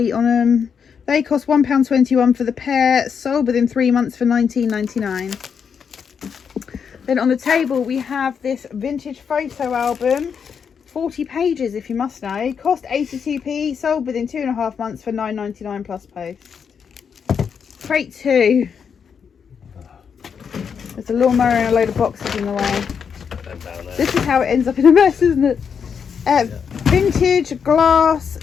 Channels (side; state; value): right; quieter; 6.8 dB